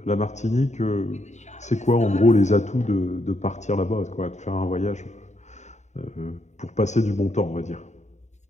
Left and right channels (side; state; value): right; late; 0.34 ms